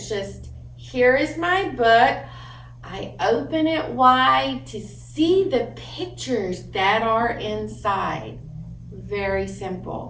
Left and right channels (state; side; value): identical; both; correlation 1.00